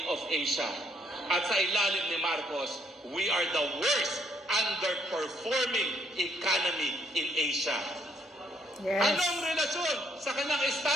of Asia. At sa ilalim ni Marcos, we are the worst underperforming economy in Asia. Yes. Anong relasyon sa kanyang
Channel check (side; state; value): both; normal; correlation 0.69